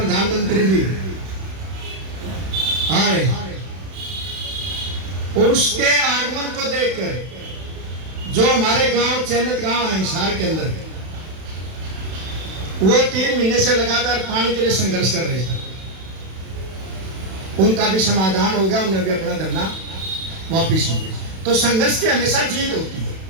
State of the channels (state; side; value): late; left; 31 ms